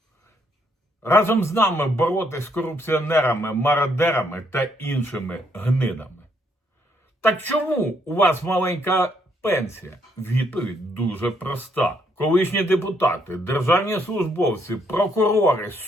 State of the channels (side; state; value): both; normal; correlation 0.72